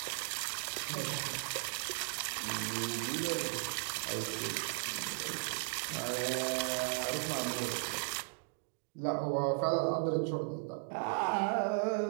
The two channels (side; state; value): left; silent; digital silence